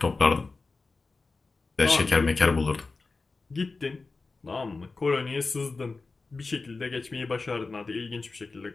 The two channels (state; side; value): quieter; right; 3.9 dB